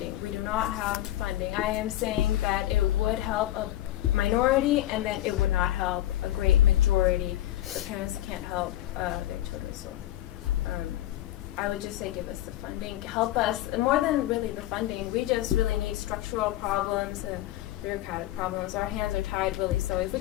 We do not have funding. I am saying that it would help a minority, and then it would not help a great majority. The parents can't help their children. So I would just say give us the funding. Help us, more than really the funding, we just really need structural problems and bureaucratic problems. Our hands are tied, really. So if we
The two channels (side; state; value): right; quieter; 14.1 dB